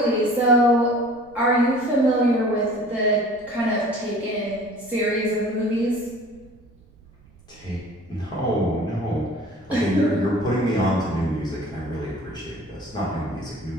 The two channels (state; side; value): noise; right; rumble, 27 dB below the sound